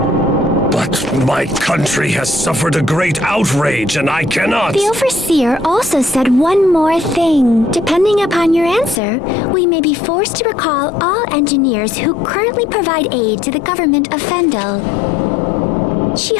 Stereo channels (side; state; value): right; drops out; at 9.0 s